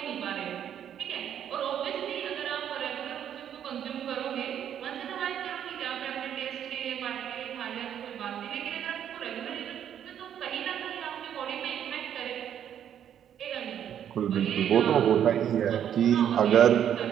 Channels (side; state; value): left; quieter; 9.6 dB